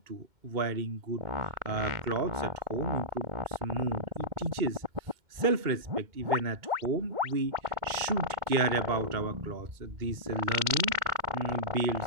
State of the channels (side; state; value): left; late; 2.1 ms